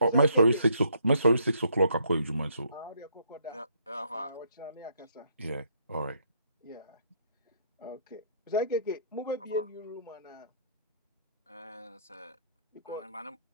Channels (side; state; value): both; inverted; correlation -0.68